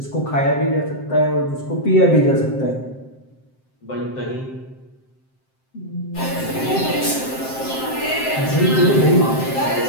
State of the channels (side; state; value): right; late; 7.6 ms